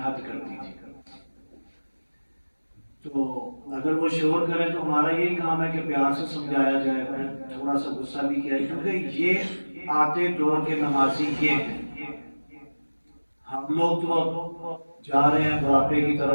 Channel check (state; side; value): inverted; both; correlation -1.00